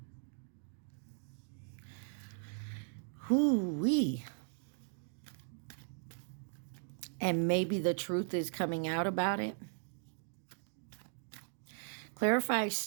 Hoo-wee. And maybe the truth is coming out about it. Clarify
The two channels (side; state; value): left; silent; digital silence